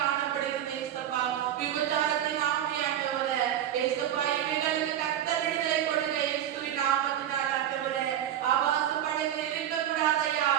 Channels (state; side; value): quieter; left; 10.9 dB